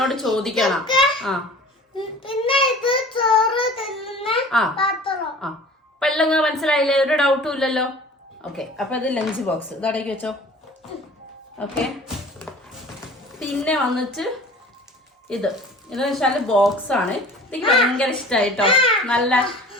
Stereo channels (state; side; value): normal; both; correlation 0.44